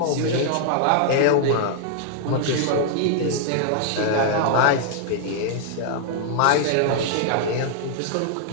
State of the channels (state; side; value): different; both; correlation -0.01